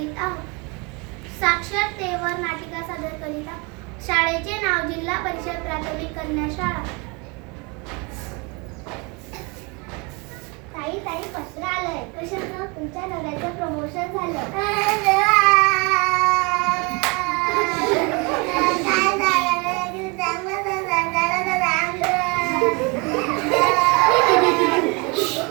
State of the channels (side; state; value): left; quieter; 29.8 dB